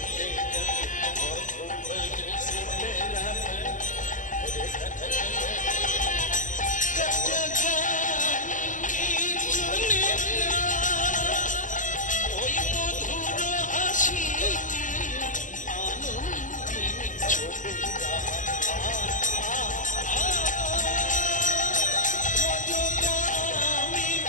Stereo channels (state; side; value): late; right; 0.37 ms